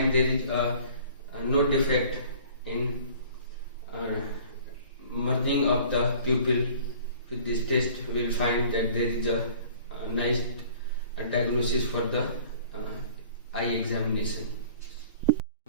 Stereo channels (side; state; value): both; inverted; correlation -0.50